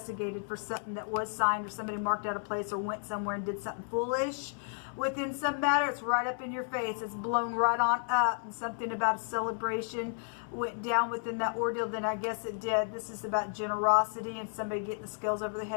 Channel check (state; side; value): silent; right; 56 dB below the other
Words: for something that was signed, or somebody marked out a place or went somewhere and did something foolish within some matter, it's right up in your face. It's blown right on up, and something about a celebration went down within that ordeal, then I guess it did. This is about generosity and somebody getting the scales over the